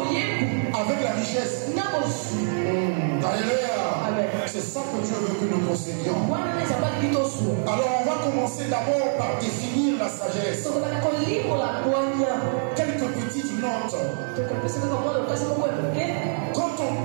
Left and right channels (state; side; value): silent; left; 62 dB below the other